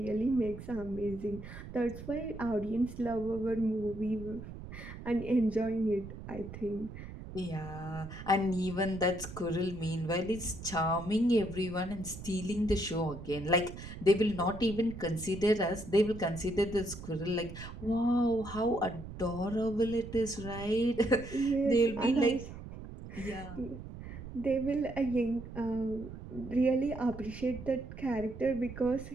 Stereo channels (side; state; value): right; noise; rumble, 12 dB below the sound